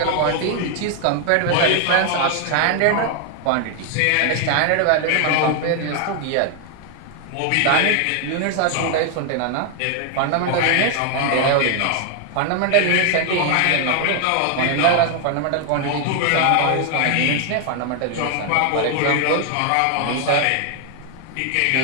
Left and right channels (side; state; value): both; different; correlation 0.00